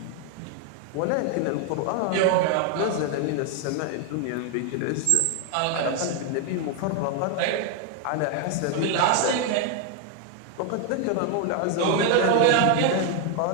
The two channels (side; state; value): both; different; correlation 0.00